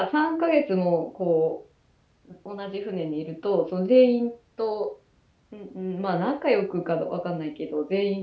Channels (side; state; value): both; identical; correlation 1.00